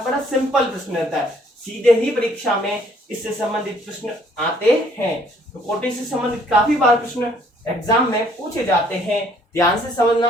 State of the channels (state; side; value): normal; both; correlation 0.62